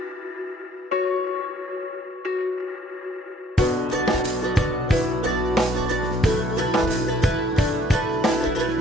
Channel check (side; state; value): both; normal; correlation 0.60